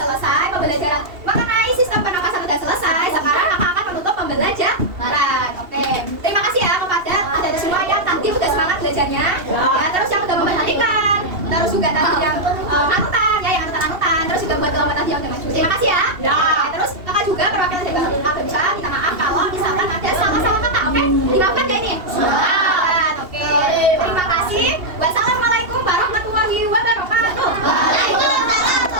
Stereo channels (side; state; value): left; late; 2.7 ms